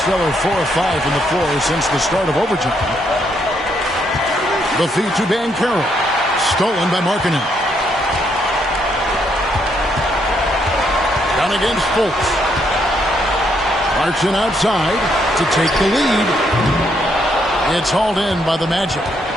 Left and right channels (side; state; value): both; normal; correlation 0.74